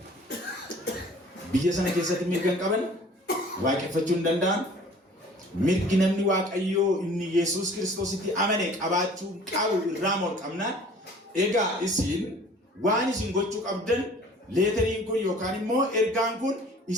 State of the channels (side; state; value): both; normal; correlation 0.49